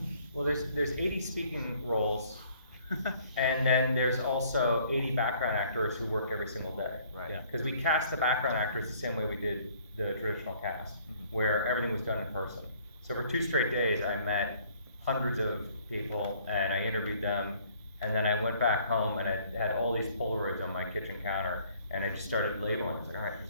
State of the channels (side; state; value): both; inverted; correlation -0.59